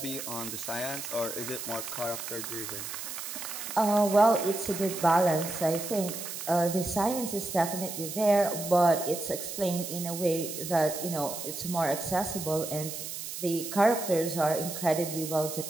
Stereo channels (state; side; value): noise; right; hiss, 7 dB below the sound